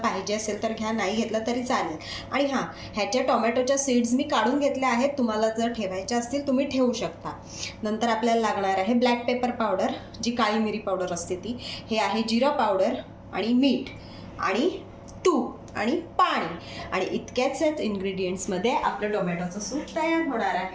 पाहिजे असेल तर घ्या, नाही घेतलं तरी चालेल. आणि हां, ह्याच्या टोमॅटोच्या सीड्स मी काढून घेतल्या आहेत. तुम्हाला जर ठेवायच्या असतील तुम्ही ठेवू शकता. नंतर आपल्याला लागणार आहे ब्लॅक पेपर पावडर, जी काळी मिरी पावडर असते ती. हे आहे जिरा पावडर आणि मीठ आणि तूप आणि पाणी. आणि इतक्याच इन्ग्रेडियंट्समध्ये आपलं टोमॅटोचं सूप तयार होणार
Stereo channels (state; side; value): identical; both; correlation 1.00